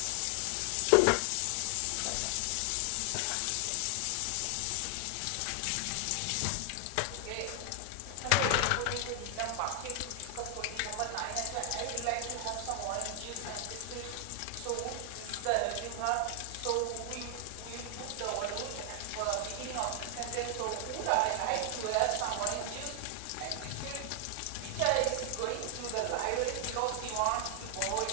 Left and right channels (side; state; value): both; different; correlation 0.00